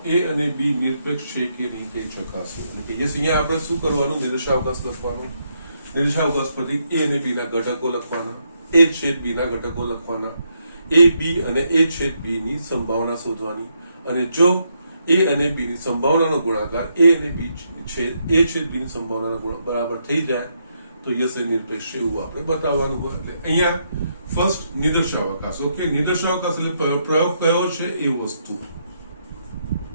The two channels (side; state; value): both; inverted; correlation -0.77